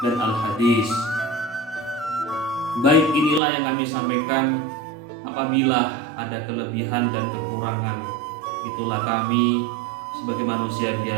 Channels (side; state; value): left; drops out; at 3.4 s